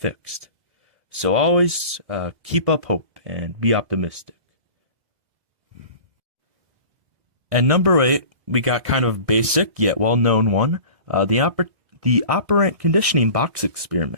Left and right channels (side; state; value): left; late; 2.0 ms